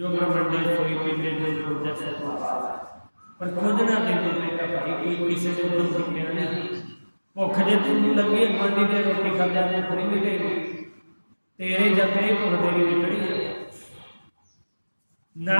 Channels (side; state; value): both; inverted; correlation -1.00